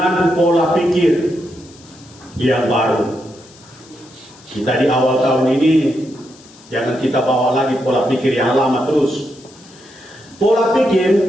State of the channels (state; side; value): noise; left; hiss, 24 dB below the sound